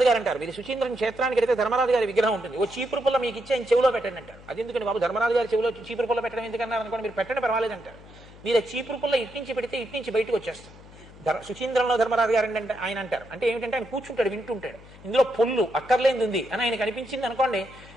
గారు అంటారు, మీరు సుచీంద్రం క్షేత్రానికి వెళితే ధర్మరాజు గారి విగ్రహం ఉంటుంది, ఓ చీపురు పుల్ల మీకు ఇచ్చి ఆయన చెవిలో పెట్టండి అంటారు. అది ఎందుకంటే బాబు ధర్మరాజు గారి చెవిలో చీపురు పుల్ల పెట్టడం ఎందుకన్నారు అనుకోండి, మీరు పెట్టండి పర్వాలేదంటారు. మీరు ఆ చీపురు పుల్ల ఇట్నుంచి పెడితే ఇట్నుంచి బయటకు వచ్చేస్తారు. సుచీంద్రంలో ధర్మరాజు గారు అంటే ఆయన అంటారు, అంటే ఏమిటంటే ఆయన కూర్చుంటాడు, వింటుంటాడు, ఇందులో పొల్లు అక్కర్లేంది ఉంది అని ఆయనకు అనిపించింది అనుకోండి,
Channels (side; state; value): left; noise; hum, 20 dB below the sound